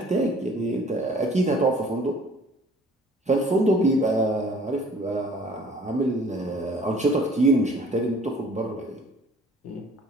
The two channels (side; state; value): both; normal; correlation 0.53